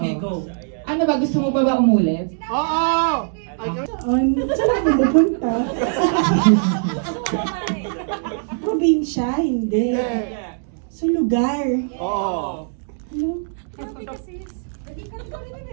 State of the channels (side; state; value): left; silent; digital silence